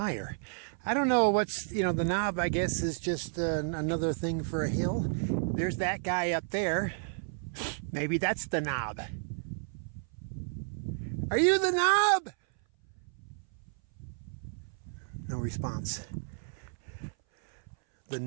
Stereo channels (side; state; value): left; silent; 56 dB below the other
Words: I don't know what's, the knob, I guess, is just another thing for a hill. There's that guy up there. Maybe that's the knob. Are you the knob? No response. The